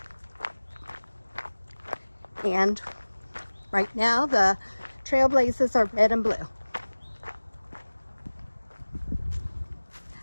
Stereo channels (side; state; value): both; inverted; correlation -1.00